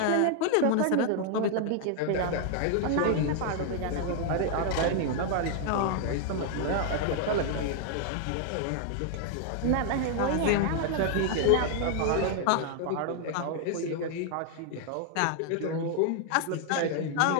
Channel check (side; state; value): both; different; correlation 0.00